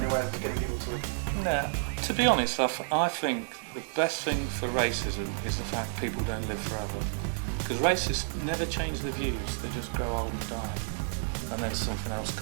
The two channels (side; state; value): left; silent; digital silence